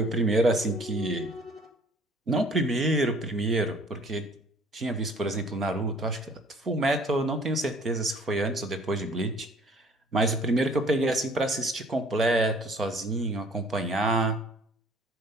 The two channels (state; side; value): normal; both; correlation 0.54